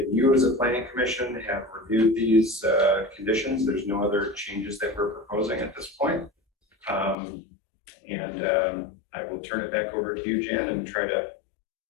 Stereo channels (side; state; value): right; drops out; at 7.2 s